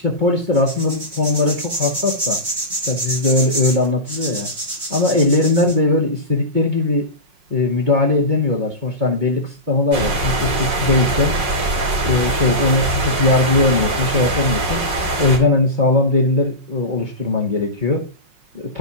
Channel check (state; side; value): late; left; 5.5 ms